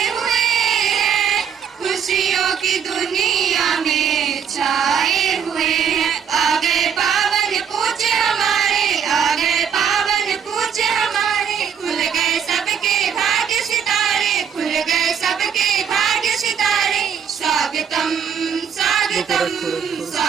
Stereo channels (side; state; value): left; quieter; 7.6 dB